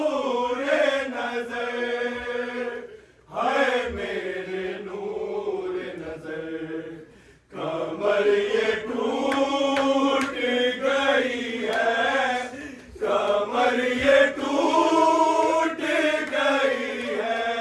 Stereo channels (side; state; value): both; identical; correlation 1.00